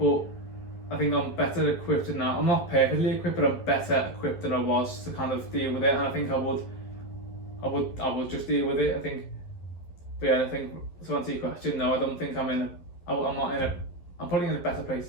I think I'm better equipped now. I'm not perfectly equipped, but I'm better equipped than I was to kind of deal with it. And I think I would just deal with it. I think, but yeah, I think to answer your question, no, I don't think I'm not in a. I'm probably in a better place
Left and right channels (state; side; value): late; right; 11 ms